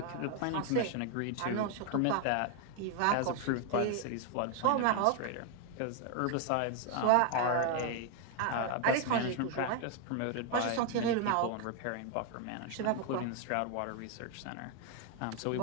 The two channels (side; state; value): both; different; correlation 0.01